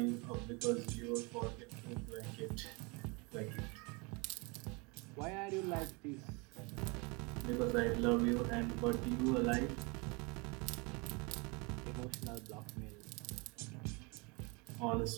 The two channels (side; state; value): left; quieter; 28.8 dB